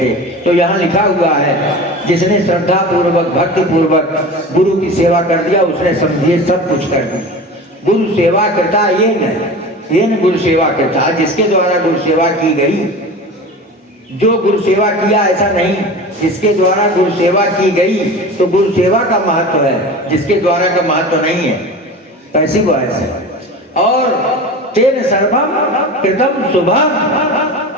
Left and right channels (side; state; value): both; normal; correlation 0.33